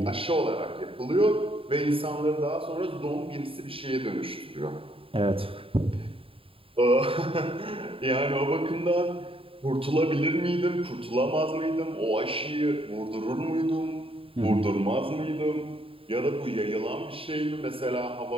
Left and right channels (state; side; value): late; left; 0.27 ms